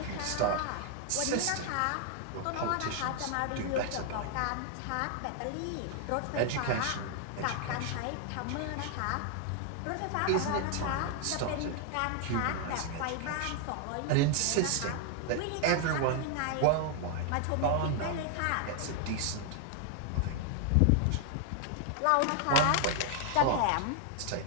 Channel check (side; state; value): both; different; correlation 0.00